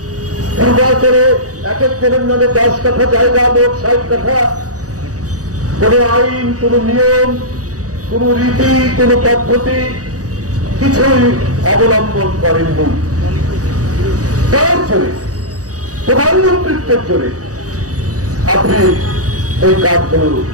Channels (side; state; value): left; late; 0.67 ms